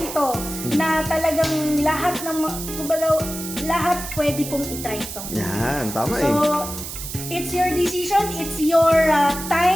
to, na talagang lahat ng, kumbaga, lahat pwede pong itry ito. Yan, tama eh. So, it's your decision, it's your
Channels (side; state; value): right; noise; hiss, 8 dB below the sound